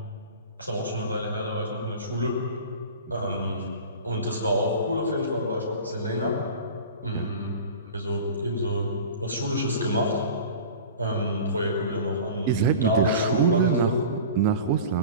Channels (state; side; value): inverted; both; correlation -0.37